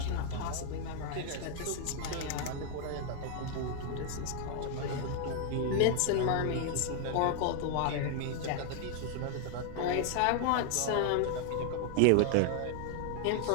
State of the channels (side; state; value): both; different; correlation 0.00